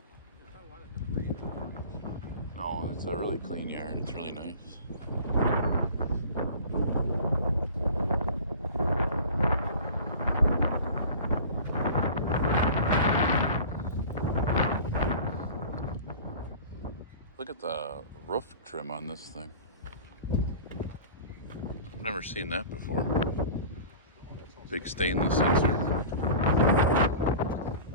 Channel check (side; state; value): both; inverted; correlation -0.39